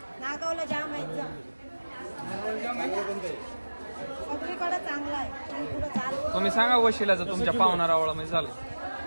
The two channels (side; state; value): both; inverted; correlation -1.00